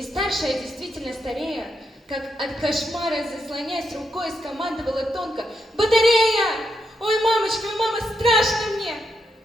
старшая, действительно старея, как от кошмара заслоняясь рукой, скомандовала тонко: «Батарея! Ой, мамочка, ой, мама, страшно мне!»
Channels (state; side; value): normal; both; correlation 0.82